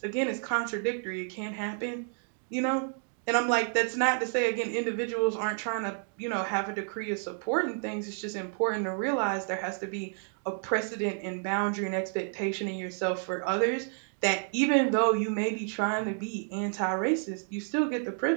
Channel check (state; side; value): silent; left; 58 dB below the other